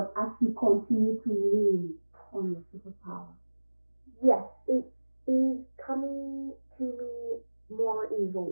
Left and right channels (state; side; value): inverted; both; correlation -1.00